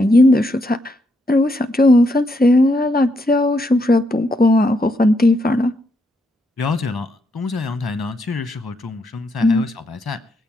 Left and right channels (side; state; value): both; normal; correlation 0.78